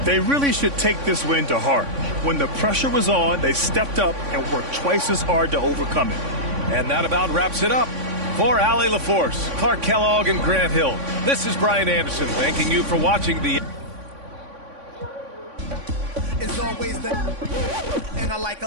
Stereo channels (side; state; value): left; late; 3.5 ms